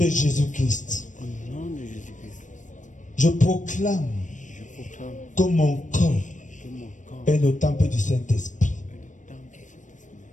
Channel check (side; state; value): right; late; 0.37 ms